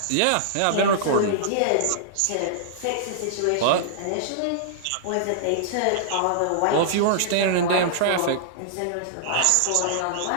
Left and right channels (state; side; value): different; both; correlation -0.02